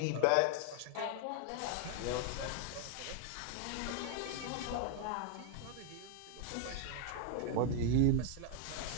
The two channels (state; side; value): different; both; correlation 0.00